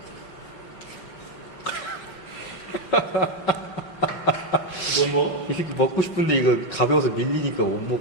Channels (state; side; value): late; right; 5.4 ms